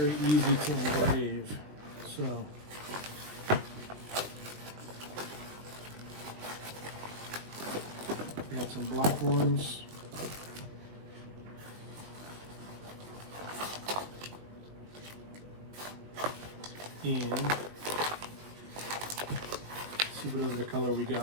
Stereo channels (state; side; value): late; left; 20 ms